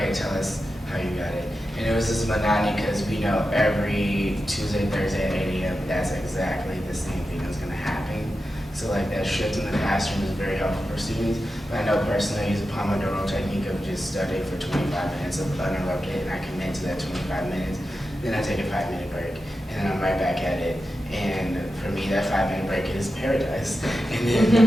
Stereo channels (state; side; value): normal; both; correlation 0.91